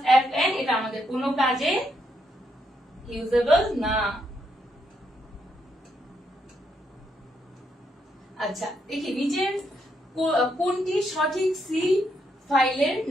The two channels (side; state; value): both; normal; correlation 0.78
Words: Fn এটা আমাদের কোনো কাজে ইউজেবল না। আচ্ছা দেখি নিচের কোনটি সঠিক সি ফাইলের